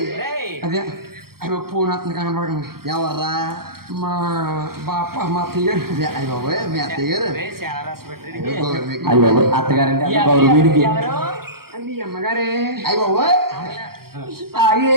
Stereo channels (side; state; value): left; late; 0.93 ms